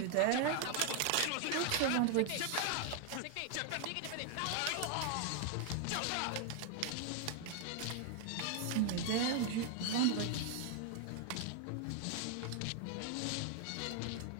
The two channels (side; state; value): both; different; correlation 0.00